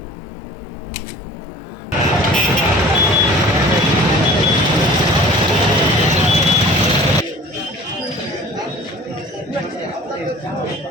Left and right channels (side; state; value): both; normal; correlation 0.45